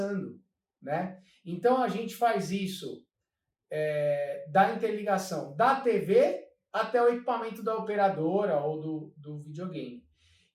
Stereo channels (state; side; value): identical; both; correlation 1.00